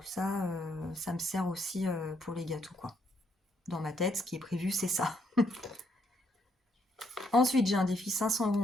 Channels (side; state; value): both; normal; correlation 0.73